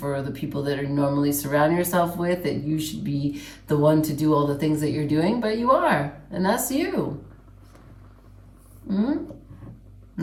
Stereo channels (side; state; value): both; identical; correlation 1.00